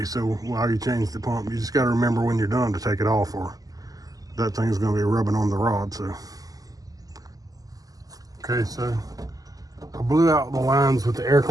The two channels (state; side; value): late; left; 0.17 ms